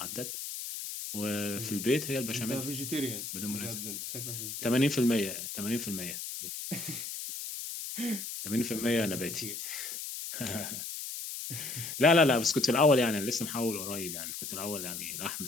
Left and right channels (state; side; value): noise; left; hiss, 6 dB below the sound